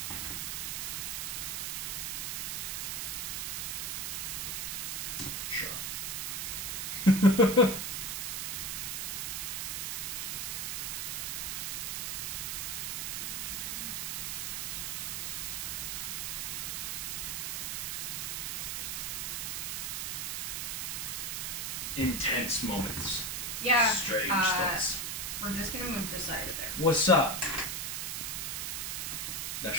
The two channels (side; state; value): right; noise; hiss, 1 dB below the sound